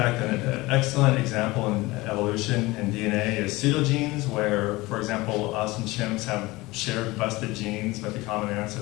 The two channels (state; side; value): quieter; right; 21.0 dB